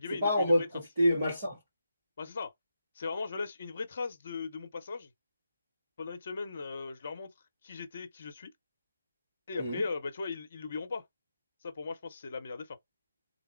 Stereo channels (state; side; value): inverted; both; correlation -0.87